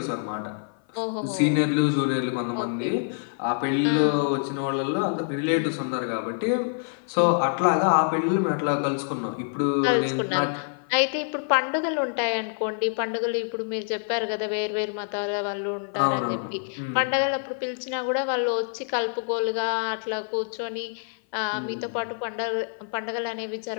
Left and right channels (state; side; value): silent; right; 55 dB below the other